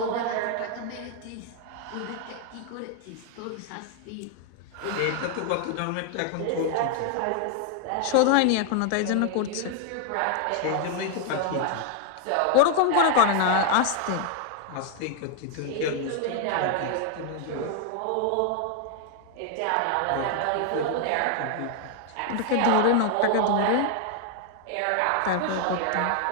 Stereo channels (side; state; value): both; different; correlation 0.00